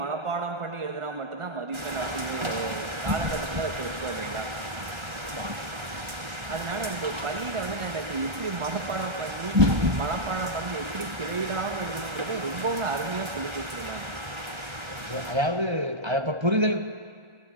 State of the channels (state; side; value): late; left; 1.3 ms